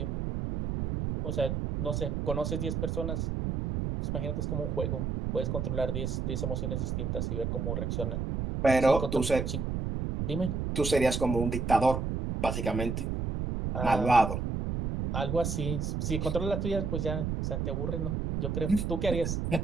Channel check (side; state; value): right; noise; rumble, 1 dB below the sound